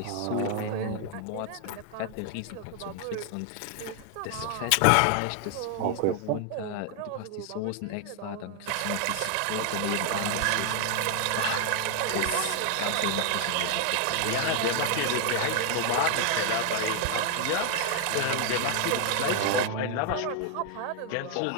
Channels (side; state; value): both; different; correlation 0.00